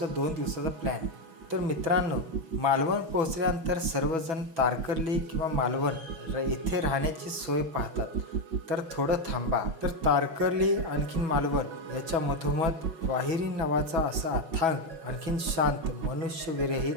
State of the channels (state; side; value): late; left; 6.1 ms